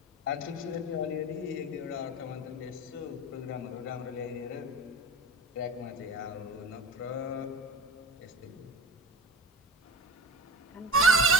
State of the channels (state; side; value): normal; both; correlation 0.36